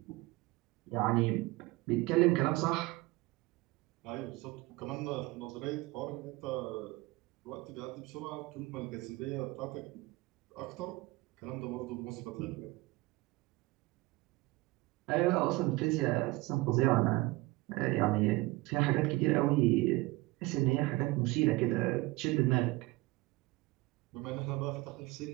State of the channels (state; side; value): quieter; left; 21.2 dB